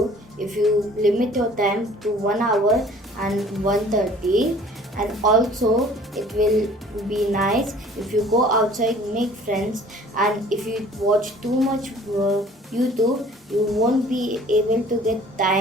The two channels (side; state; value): both; normal; correlation 0.51